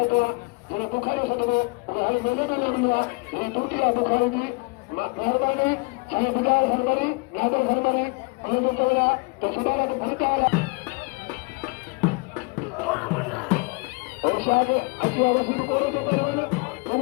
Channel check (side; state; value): right; quieter; 29.6 dB